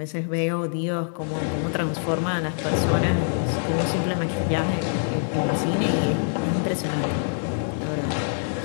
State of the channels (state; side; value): silent; right; digital silence